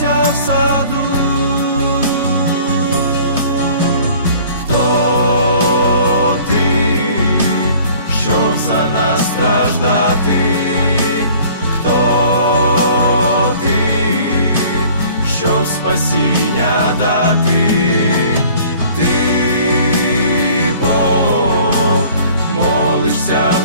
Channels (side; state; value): both; inverted; correlation -0.51